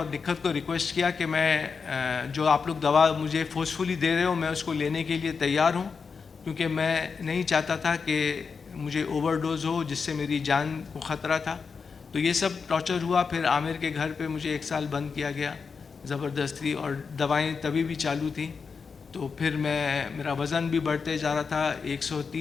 निखत को रिक्वेस्ट किया कि मैं जो आप लोग दवा मुझे फोर्सफुली दे रहे हो, मैं उसको लेने के लिए तैयार हूँ, क्योंकि मैं नहीं चाहता था कि मुझे ओवरडोज हो जिससे मेरी जान को ख़तरा था। तो ये सब टॉर्चर हुआ। फिर आमिर के घर पे मुझे 1 साल बंद किया गया ज़बरदस्ती, और दवाएं तभी भी चालू थी। तो फिर मेरा वज़न भी बढ़ते जा रहा था,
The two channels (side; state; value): right; quieter; 5.4 dB